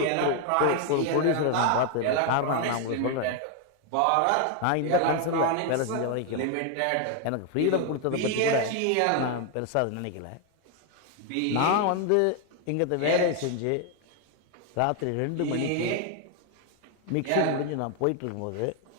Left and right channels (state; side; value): different; both; correlation 0.01